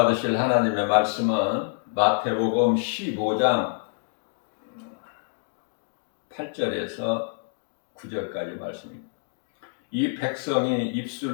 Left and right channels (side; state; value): right; silent; digital silence